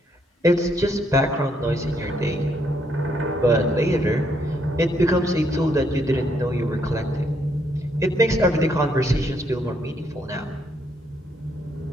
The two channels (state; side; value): normal; both; correlation 0.72